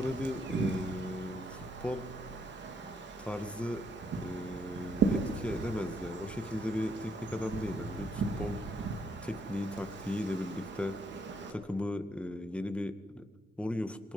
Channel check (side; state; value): both; normal; correlation 0.73